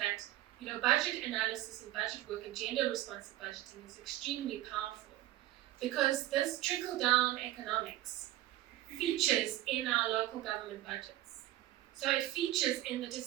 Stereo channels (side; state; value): left; quieter; 15.1 dB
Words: budget analysis and budget work and gender-responsive budgeting is extremely powerful, because this trickle-down economics features in our local government budgets. So it features in the